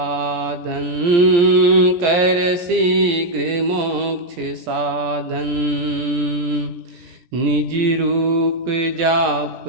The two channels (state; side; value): late; left; 17 ms